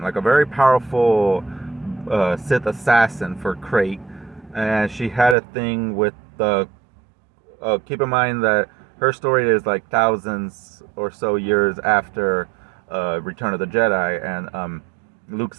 a very powerful Sith assassin for Krayt, and she had a thing with the. Keep in mind that her story is like thousands or so years after Return of the Jedi, and Luke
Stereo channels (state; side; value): drops out; left; at 5.4 s